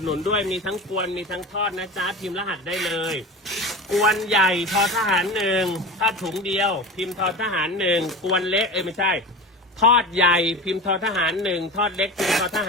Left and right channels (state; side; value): normal; both; correlation 0.30